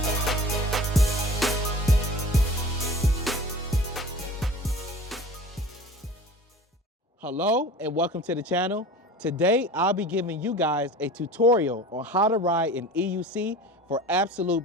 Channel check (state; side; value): normal; both; correlation 0.40